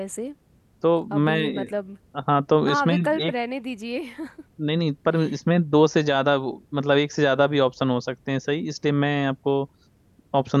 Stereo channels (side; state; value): both; identical; correlation 1.00